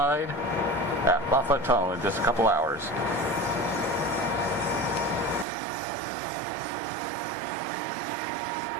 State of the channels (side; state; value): left; drops out; at 5.5 s